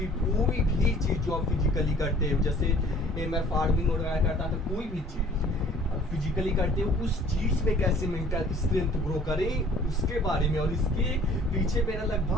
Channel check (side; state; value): both; normal; correlation 0.52